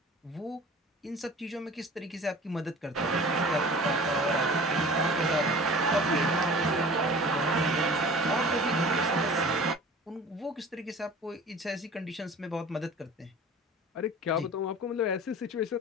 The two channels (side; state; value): both; normal; correlation 0.43